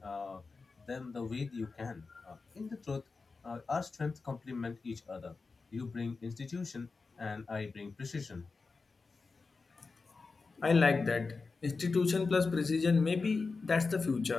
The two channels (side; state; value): right; quieter; 4.2 dB